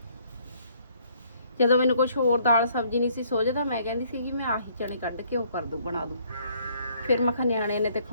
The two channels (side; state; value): both; inverted; correlation -0.64